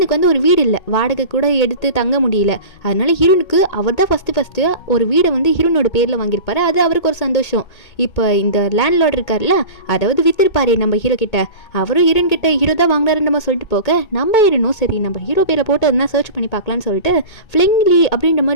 வந்து ஒரு வீடு இல்லை, வாடகை கூட எடுத்து தங்க முடியல. அதனால ஹீரோனுக்கு அவர் தான் ஃபஸ்ட்டு ஒரு வீடை வந்து ஹீரோனோட பேரில் வாங்கியிருப்பாரு. அது அவருக்கு ஒரு சந்தோஷம். இப்போ இந்த லேண்ட்லார்ட் இருக்கார்ல, அதாவது வித்திருப்பாரு நம்ம ஹீரோ கிட்ட, அவரும் ஹீரோன் கிட்ட ஹீரோ தான் வாங்கினாருன்னு நம்ம சொல்லிட்டு போக நம்ம ஹீரோனும் சரி நம்ம ஹீரோ பேரை போட்டு அதுனா சர்ச் பண்ணி பார்க்கலான்னு சொல்லிட்டு ஃப்ளிங்லி அப்படின்ற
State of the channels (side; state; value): right; late; 2.2 ms